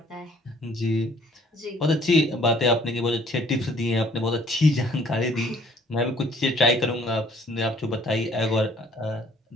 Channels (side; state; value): both; normal; correlation 0.58